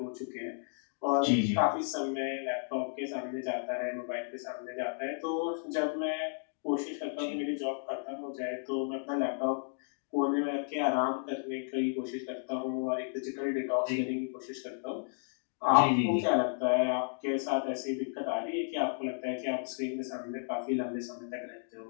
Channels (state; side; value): silent; right; digital silence